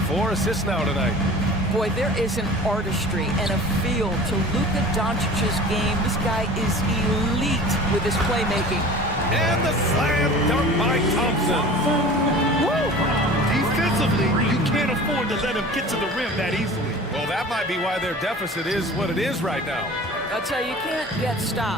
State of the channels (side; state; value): both; normal; correlation 0.41